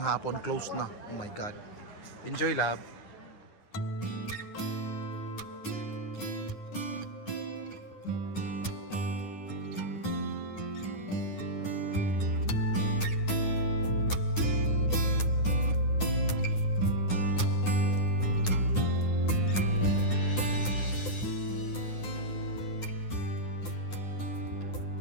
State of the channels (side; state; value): right; late; 9.8 ms